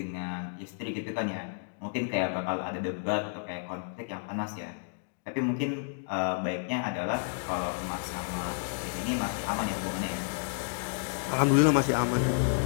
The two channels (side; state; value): right; silent; digital silence